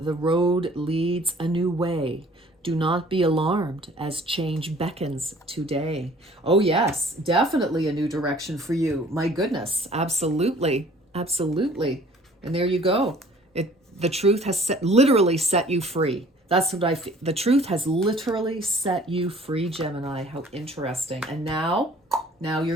road leads a new way. Do not be alarmed as change beckons today. Oh yes, definitely a new direction for you. My goodness, absolutely, absolutely. And there you go. The truth has literally set you free. That's what I feel. The truth has literally set you free, Gemini. How interesting. And now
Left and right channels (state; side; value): normal; both; correlation 0.52